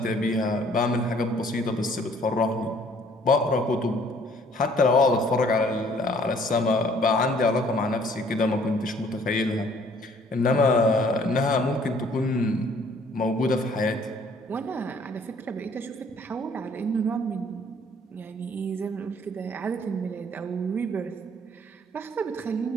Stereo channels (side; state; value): both; normal; correlation 0.59